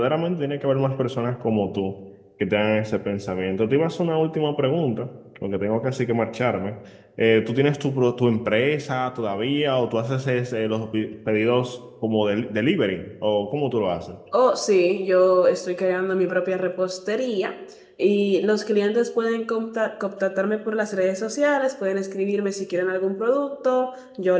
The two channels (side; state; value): both; identical; correlation 1.00